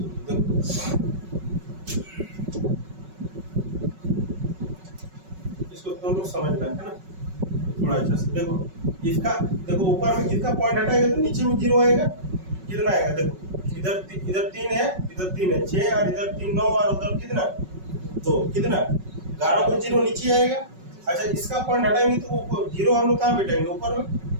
देखो इसको तुम लोग समझना है ना थोड़ा अच्छा से देखो, इसका देखो ऊपर में किसका पॉइंट हटाएगा तो नीचे में 0 आएगा। कितना आएगा देखो, इधर 3 है, इधर 3 है, 6 और इधर 3 9 और उधर कितना 2, कितना 11 को 0 नीचे आएगा। अच्छा इसका पॉइंट हटाएंगे तो 0 हम लोग कहाँ बैठाएंगे, ऊपर में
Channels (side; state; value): left; late; 5.3 ms